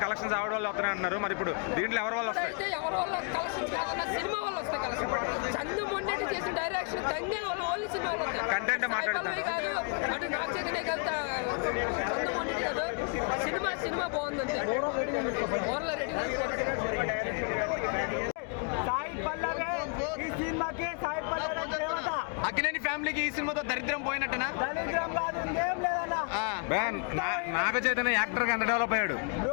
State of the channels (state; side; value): quieter; right; 38.9 dB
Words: కలెక్షన్స్ ఆవిడ వల్ల వస్తున్నాయి అంటున్నారు. మరి ఇప్పుడు దీంట్లో ఎవరి వల్ల వస్తాయి? అయితే ఎవరి వల్ల కలెక్షన్స్ కాదన్న సినిమా వల్ల వస్తాయి కలెక్షన్. చందు మొండెట్టి చేసిన డైరెక్షన్ తంగేల వల్ల ఓన్లీ సినిమా వల్ల వస్తాయి. కంటెంట్ మాట్లాడుతున్నారు కాదు, అటు నాగ చైతన్య కాదు, చందు మొండెట్టి కాదు, సినిమా బాగుంది అంతే. ఓవర్లో రేటింగ్ సాయి పల్లవి ఈ సినిమాకి, సాయి పల్లవి దేవత. అక్కినేని ఫ్యామిలీకి ఈ సినిమాతో దరిద్రం పోయినట్టనా? దరిద్రం కాదు, ఇంకేం లేదన్నా. నాగ చైతన్య యాక్టర్ గా ఎంత డెవలప్ అయ్యాడు